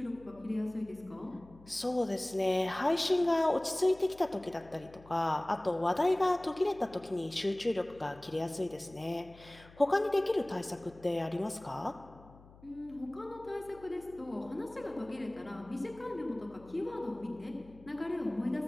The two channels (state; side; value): noise; left; hum, 22 dB below the sound